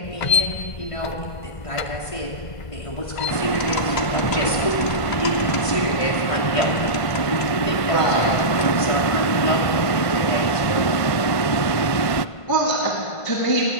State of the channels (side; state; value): right; late; 1.5 ms